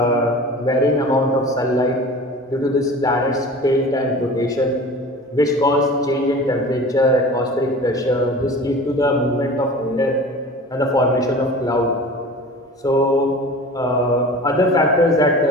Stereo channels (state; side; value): normal; both; correlation 0.39